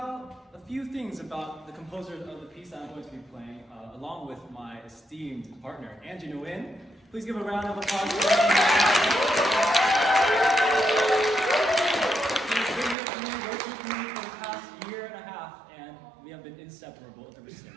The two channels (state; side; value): drops out; left; at 13.0 s